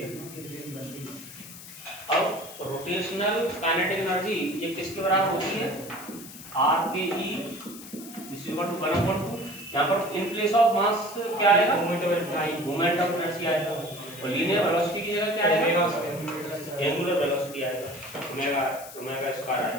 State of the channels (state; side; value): noise; left; hiss, 15 dB below the sound